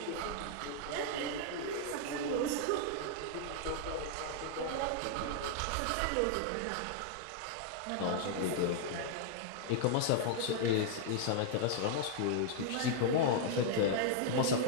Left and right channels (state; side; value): different; both; correlation -0.01